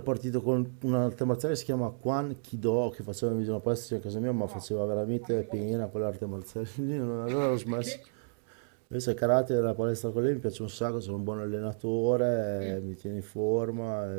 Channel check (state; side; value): silent; left; digital silence